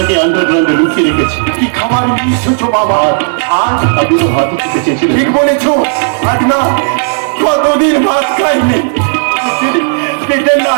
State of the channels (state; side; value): silent; left; digital silence